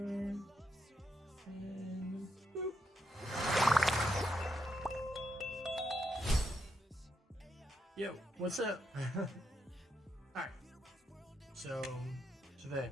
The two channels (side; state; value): both; normal; correlation 0.81